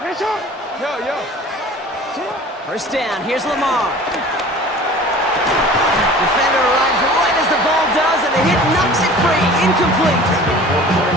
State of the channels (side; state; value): both; normal; correlation 0.43